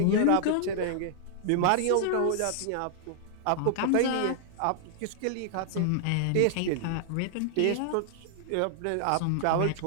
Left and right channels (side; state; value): both; different; correlation -0.01